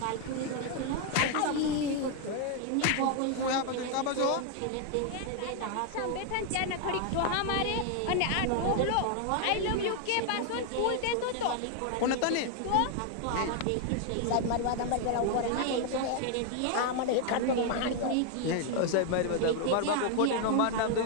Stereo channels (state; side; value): different; both; correlation 0.00